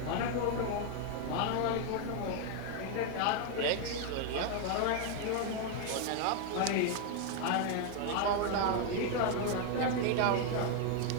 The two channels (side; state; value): both; different; correlation 0.00